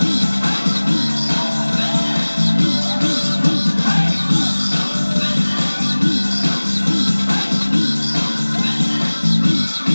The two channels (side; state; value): both; inverted; correlation -1.00